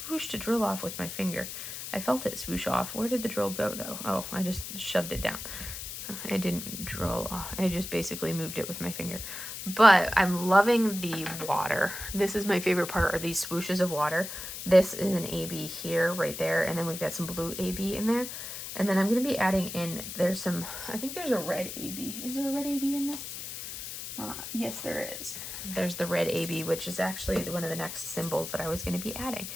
swooshed a drill off with my finger. I felt it swoosh off. Where did the drill go, though? Oh, I just shoved it down. I didn't drill off. I just basically moved it with my finger. But I'm loving the water. This is my favorite part, are these swooshes of water. This is an AB here, right there. And then we've got some blue AB in there. And then I'm going to be adding in, there's some, I think there's a red AB. Is there a red AB in this? Yes, there is. There's the red AB, which is actually one of the next symbols that I was going to be adding.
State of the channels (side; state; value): left; noise; hiss, 8 dB below the sound